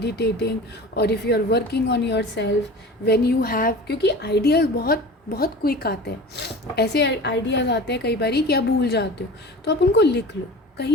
or if you are working on yourself, when you have, क्योंकि आइडियाज़ बहुत बहुत क्विक आते हैं, ऐसे आइडियाज़ आते हैं कई बारी कि आप भूल जाते हो, तो आप उनको लिख लो,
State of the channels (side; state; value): both; normal; correlation 0.37